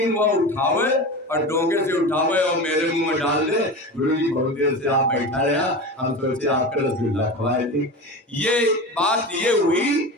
वह उठावे और डोंगे से उठावे और मेरे मुंह में डाल दे। गुरु जी बहुत देर से आप बैठा रहा, हम सोचे आपका रसगुल्ला खवाए थे। ये बात ये हुई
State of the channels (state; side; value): normal; both; correlation 0.28